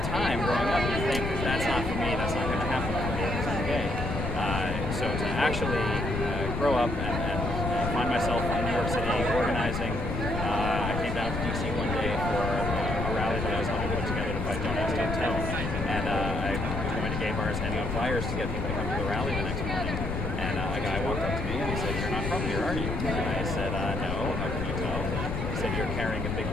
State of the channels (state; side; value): noise; left; rumble, 2 dB below the sound